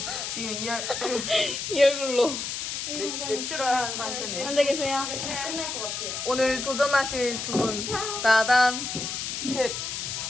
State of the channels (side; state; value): left; noise; hiss, 4 dB below the sound